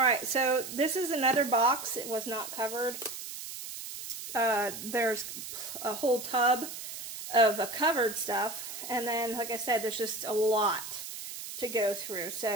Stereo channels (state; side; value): noise; right; hiss, 9 dB below the sound